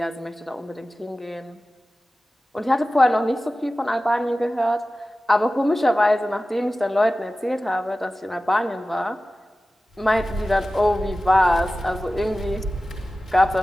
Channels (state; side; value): normal; both; correlation 0.95